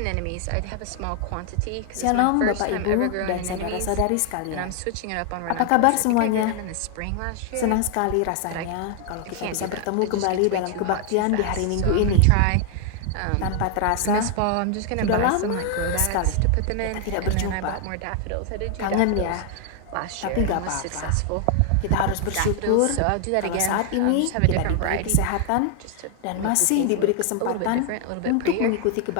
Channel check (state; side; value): different; both; correlation 0.00